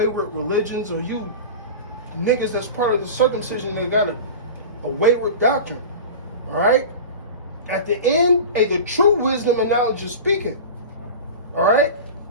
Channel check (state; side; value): inverted; both; correlation -0.32